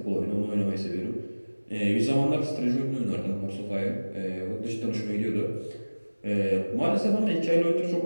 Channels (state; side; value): inverted; both; correlation -1.00